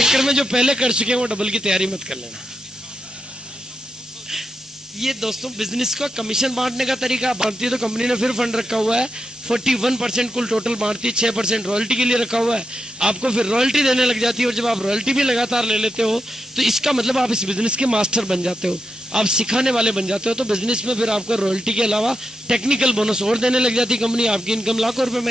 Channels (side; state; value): both; normal; correlation 0.86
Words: में जो पहले कर चुके हैं वो डबल की तैयारी मत कर लेना। ये दोस्तों बिजनेस का कमीशन बांटने का तरीका बांटती है तो कंपनी ने फिर फंड रखा हुआ है 41% कुल टोटल बांटती है, 6% रॉयल्टी के लिए रखा हुआ है, आपको फिर रॉयल्टी देने लग जाती है। और जब आप रॉयल्टी भी लगातार ले लेते हो तो इसका मतलब आप इस बिजनेस के मास्टर बन जाते हो, आप सिखाने वाले बन जाते हो। तो बिजनेस में फिर आपको रॉयल्टी के अलावा टेक्निकल बोनस और देने लग जाती है कंपनी, आपकी इनकम लाखों रुपए